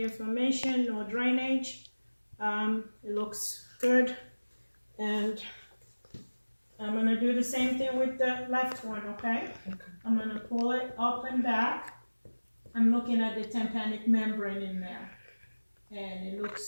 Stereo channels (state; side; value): inverted; both; correlation -1.00